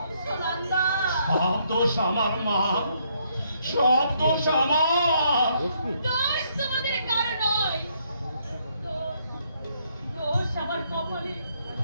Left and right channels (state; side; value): inverted; both; correlation -0.72